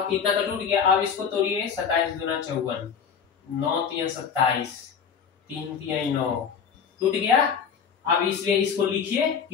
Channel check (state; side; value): quieter; right; 6.9 dB